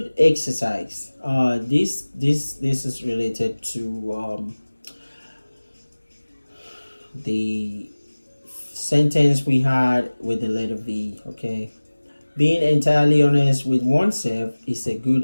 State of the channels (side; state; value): both; inverted; correlation -1.00